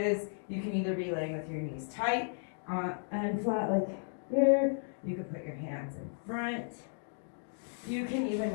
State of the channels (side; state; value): right; silent; digital silence